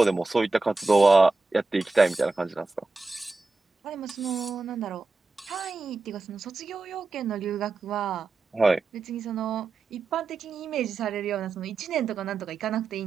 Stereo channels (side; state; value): left; quieter; 3.7 dB